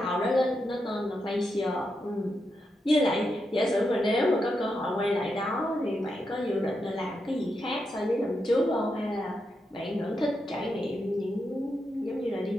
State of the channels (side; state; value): both; normal; correlation 0.85